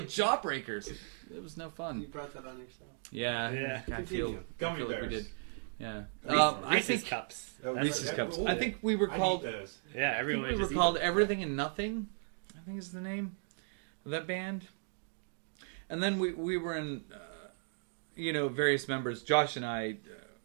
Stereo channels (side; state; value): left; silent; digital silence